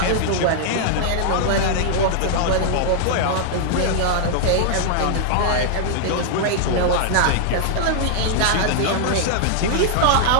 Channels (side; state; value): both; different; correlation -0.01